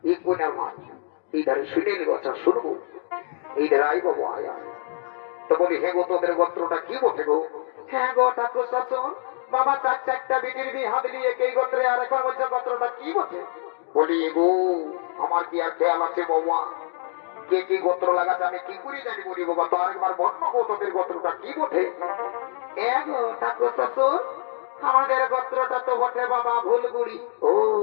এই কোনার মা, এই ধারে শুনে নিব, আচ্ছা শুনবো, এই ধারে আই বাবু আয়া। তো বলি হে গো, তোদের গোত্রটা কি বটে গো? হ্যাঁ গো ঠাকুর শাসন, বাবা 4-4টা বিটির বিয়ে হাত দিয়ে এই গোত্রে, আর এখন বলছে গোত্রটা কি বটে? বলি এগো আমার কি আর খেয়াল আছে বাবা? কে কি গোত্র লাগাচ্ছে আমি কি করি জানি? বলি বাবা তো আরেকবার বন্য গো, তোদের গোত্রটা কি বটে? এগো ঠাকুর শাসন, আমাদের গোত্রটা তো বটে বাবা ভুলগুড়ি। ও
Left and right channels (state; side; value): silent; right; digital silence